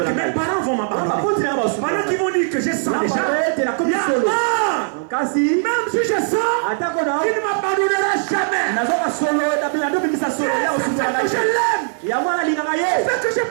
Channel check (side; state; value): left; silent; 55 dB below the other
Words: que mes parents vont m'abandonner, pendant qu'ils vont dire que je sens déjà, même si je sens qu'il ne m'abandonnera jamais, que je l'aime, fait que je